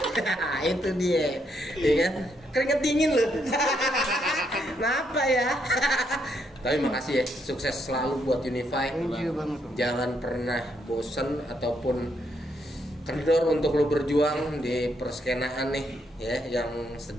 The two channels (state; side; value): normal; both; correlation 0.76